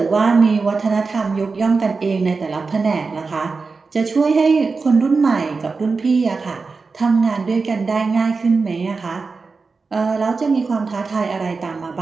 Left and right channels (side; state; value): left; quieter; 4.4 dB